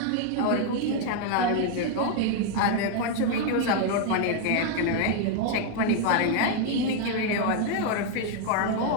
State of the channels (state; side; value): different; both; correlation 0.01